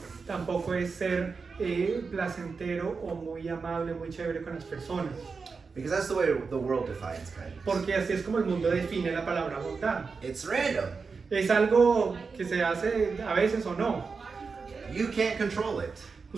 Tampoco es ser placentero o muy amable, muy chévere con las personas. Because that's the way the world defines kindness. Porque así es como el mundo define la palabra bondad. It's random. Es algo que se hace a veces o no. You can't control it.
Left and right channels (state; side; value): quieter; left; 4.9 dB